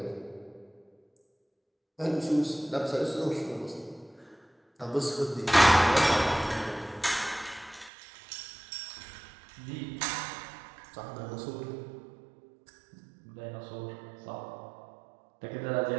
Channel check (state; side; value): drops out; left; at 7.9 s